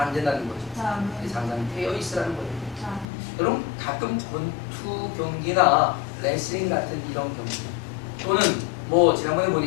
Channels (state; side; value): drops out; right; at 3.1 s